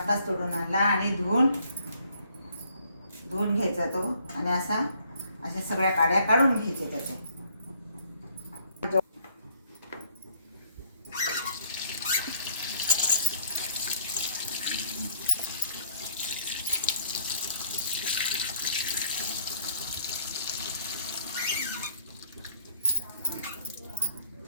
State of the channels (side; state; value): both; inverted; correlation -0.62